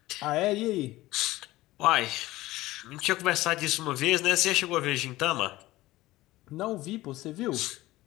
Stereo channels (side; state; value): right; quieter; 17.7 dB